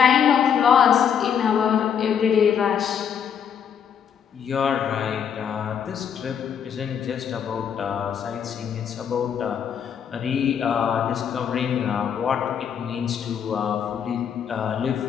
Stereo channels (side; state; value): right; quieter; 8.0 dB